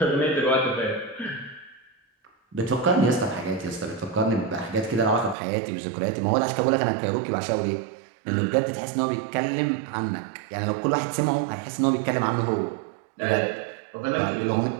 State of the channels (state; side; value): drops out; left; at 5.4 s